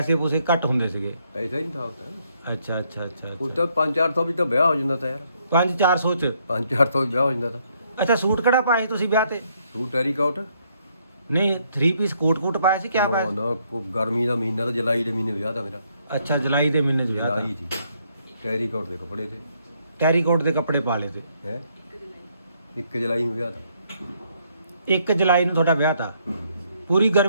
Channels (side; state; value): both; inverted; correlation -0.71